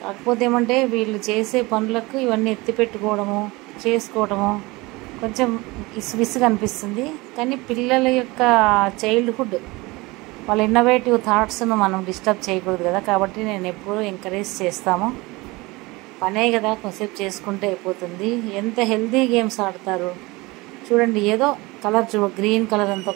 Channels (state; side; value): quieter; left; 22.9 dB